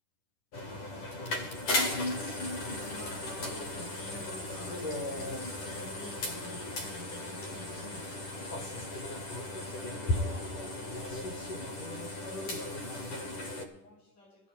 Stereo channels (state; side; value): late; right; 10 ms